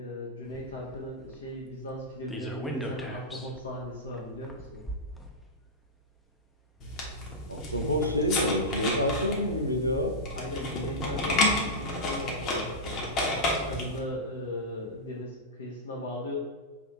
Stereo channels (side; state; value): both; normal; correlation -0.10